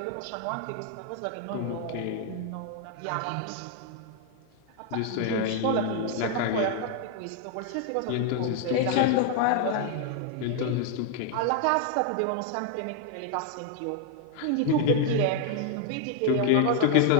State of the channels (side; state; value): both; different; correlation 0.00